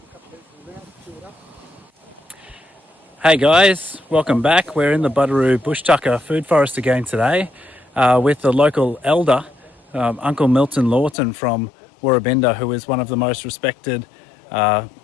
Hey guys, welcome back. We're in the Buderoo Bush Tucka food forest again today with the local elder, Uncle Milton Lawton from Woorabinda, who is one of the most respected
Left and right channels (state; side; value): drops out; right; at 11.2 s